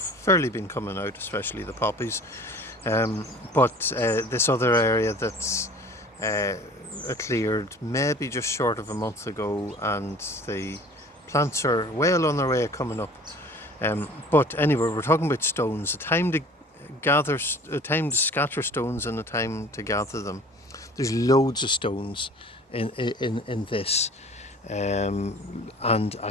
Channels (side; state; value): both; normal; correlation 0.46